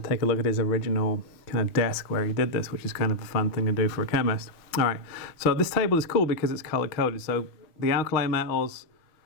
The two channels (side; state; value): right; late; 6.1 ms